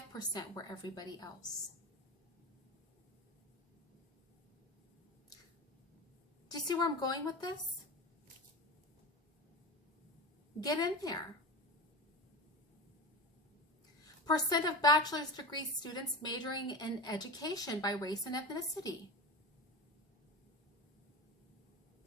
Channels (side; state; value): both; normal; correlation 0.26